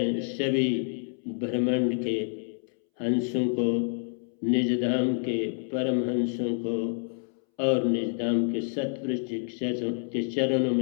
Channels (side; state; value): right; silent; 59 dB below the other